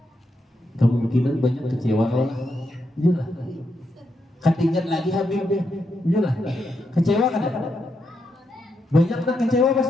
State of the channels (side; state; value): both; normal; correlation 0.82